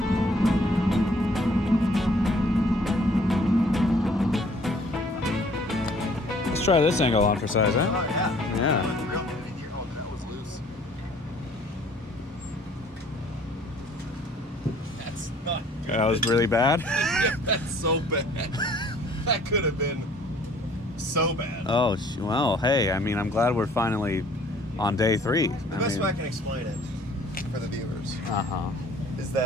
Let's try this angle on for size, huh? Oh yeah. Yeah. That was loose. That's not good. That was really bad. That's so bad. That could have been so bad. Oh, well, hey, I mean, I'm glad we're finally on day 3. The best way I can explain it for the viewers Uh-huh. is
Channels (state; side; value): normal; both; correlation 0.56